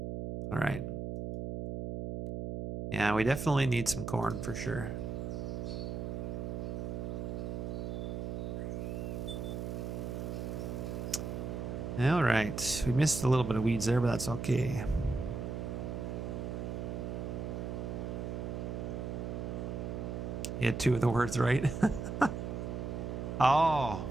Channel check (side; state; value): right; noise; hum, 4 dB below the sound